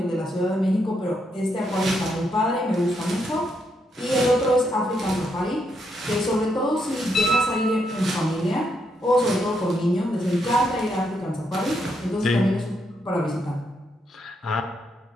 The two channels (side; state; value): both; normal; correlation 0.78